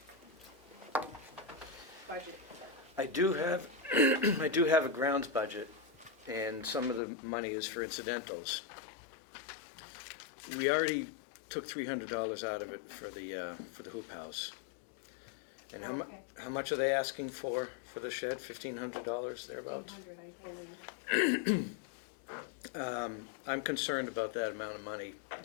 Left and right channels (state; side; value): drops out; right; at 7.0 s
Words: budget. I do have, I do have a grounds budget, and some of the money is for incidentals. We already took $300 out of it for the hoop house. And Okay. how much are they asking for the shed? $1,500 thereabouts? 100, I believe. I'm concerned about that amount of money